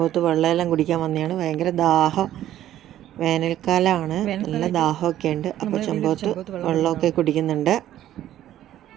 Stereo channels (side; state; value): left; quieter; 12.5 dB